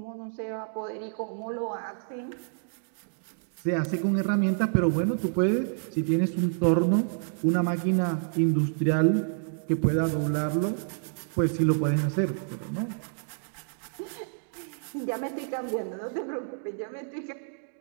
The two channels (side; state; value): left; silent; digital silence